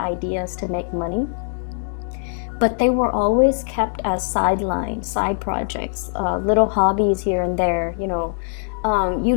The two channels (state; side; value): silent; right; digital silence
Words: to make money, but they were always kept as sidelines, side projects, little hobbies here and there, You